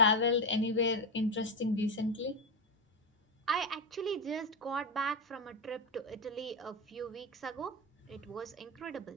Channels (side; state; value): both; normal; correlation 0.10